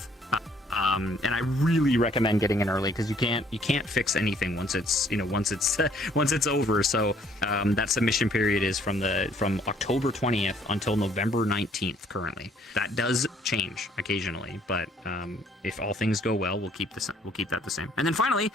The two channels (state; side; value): normal; both; correlation 0.62